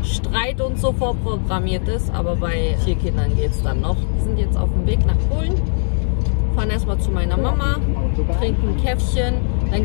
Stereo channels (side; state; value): right; silent; digital silence